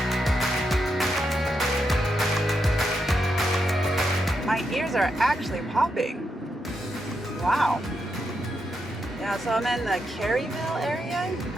My ears are actually popping. Wow. Yeah, so I'm in the Kerrville area,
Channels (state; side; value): normal; both; correlation 0.83